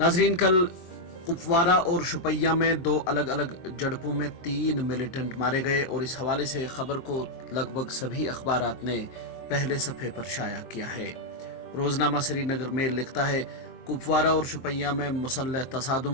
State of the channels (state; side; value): late; right; 23 ms